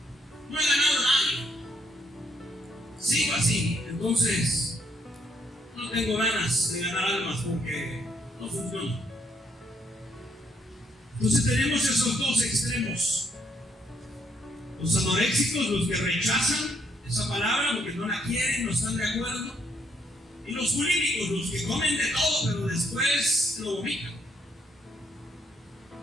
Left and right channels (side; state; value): both; normal; correlation 0.72